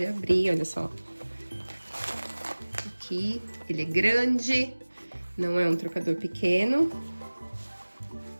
abrir, olha só. Aqui, ele é grande, não é um trocador pequeno.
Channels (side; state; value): both; inverted; correlation -1.00